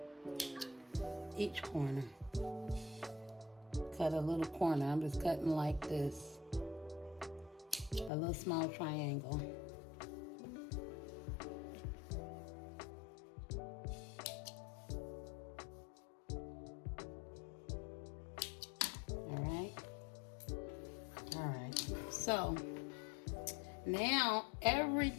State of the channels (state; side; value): drops out; right; at 8.1 s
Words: each corner. Cut a little corner, I'm just cutting like this. A little small triangle. All right. So now